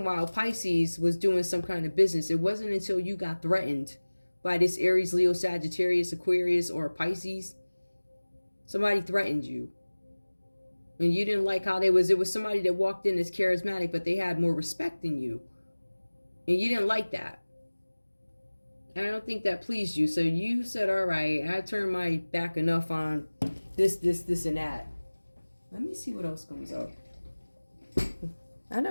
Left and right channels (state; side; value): inverted; both; correlation -1.00